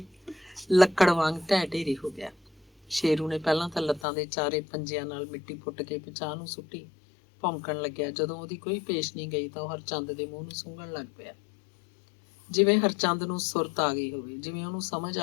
ਲੱਕੜ ਵਾਂਗ ਢਹਿ ਢੇਰੀ ਹੋ ਗਿਆ। ਸ਼ੇਰੂ ਨੇ ਪਹਿਲਾਂ ਤਾਂ ਲੱਤਾਂ ਦੇ ਚਾਰੇ ਪੰਜਿਆਂ ਨਾਲ ਮਿੱਟੀ ਪੁੱਟ ਕੇ ਪਿਛਾਂਹ ਨੂੰ ਸੁੱਟੀ। ਭੌਂਕਣ ਲੱਗਿਆ। ਜਦੋਂ ਉਹਦੀ ਕੋਈ ਪੇਸ਼ ਨਹੀਂ ਗਈ ਤਾਂ ਉਹ ਹਰਚੰਦ ਦੇ ਮੂੰਹ ਨੂੰ ਸੁੰਘਣ ਲੱਗ ਪਿਆ, ਜਿਵੇਂ ਹਰਚੰਦ ਨੂੰ ਸੁਰਤ ਆ ਗਈ ਹੋਵੇ, ਜਿਵੇਂ ਉਹਨੂੰ ਸਮਝ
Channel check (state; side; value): drops out; right; at 4.0 s